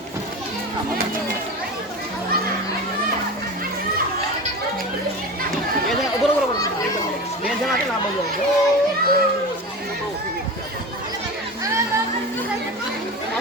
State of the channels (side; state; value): both; normal; correlation 0.29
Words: बरोबर બે જણા છે ને આ બાજુ